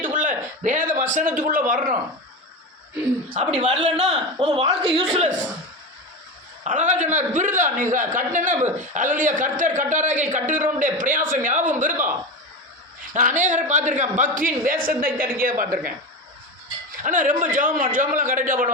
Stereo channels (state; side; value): normal; both; correlation 0.21